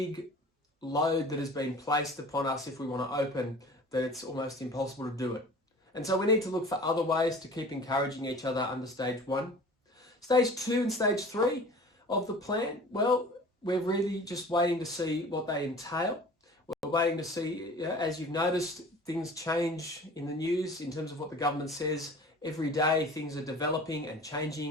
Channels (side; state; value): both; normal; correlation 0.43